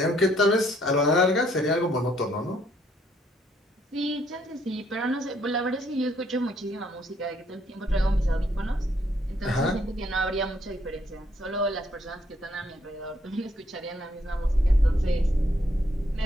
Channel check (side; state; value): both; normal; correlation 0.69